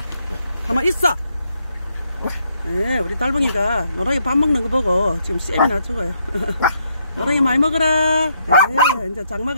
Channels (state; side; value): inverted; both; correlation -0.75